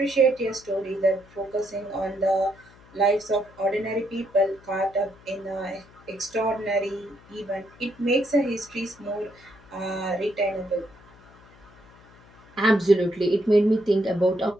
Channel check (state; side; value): noise; left; hum, 25 dB below the sound